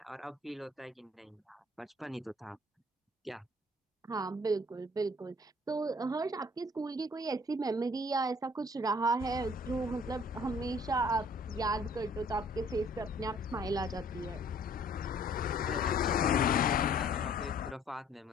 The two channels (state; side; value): normal; both; correlation 0.56